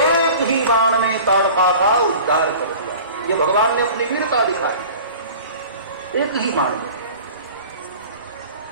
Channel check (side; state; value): both; inverted; correlation -0.41